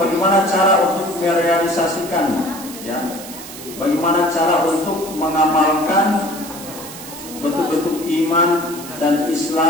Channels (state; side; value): noise; right; hiss, 13 dB below the sound